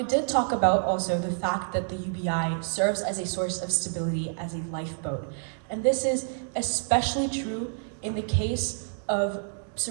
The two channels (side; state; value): left; silent; digital silence